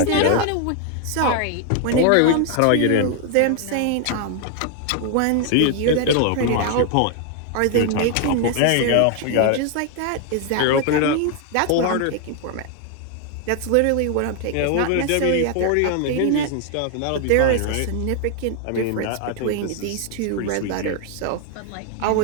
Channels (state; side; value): different; both; correlation 0.00